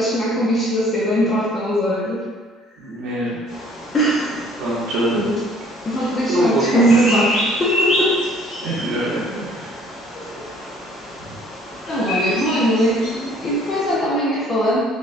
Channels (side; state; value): both; normal; correlation 0.57